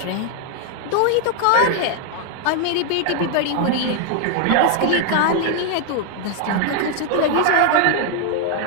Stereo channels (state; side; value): different; both; correlation 0.00